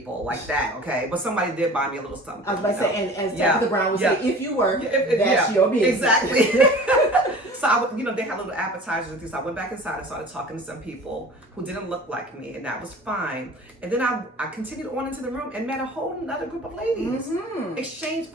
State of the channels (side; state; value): both; normal; correlation 0.42